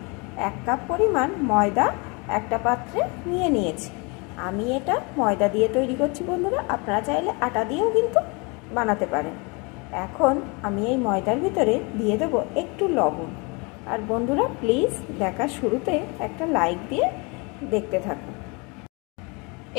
1 कप परिमाण मयदा एकटा पात्रे निये नियेछि। आमी एटा मयदा दिये तैरी करछि बंधुरा, आपनारा चाइले आटा दिएও किन्तु बानाते पारेन। एखन आमी एई मयदार भितरे दिये देब एकटु लवण। और बंधुरा प्लिज देखा शुरूते एक लाइक दिए देखते थाकुन।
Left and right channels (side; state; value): right; quieter; 30.1 dB